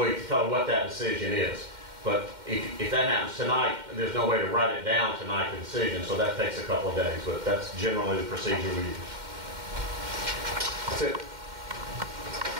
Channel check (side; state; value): left; late; 2.1 ms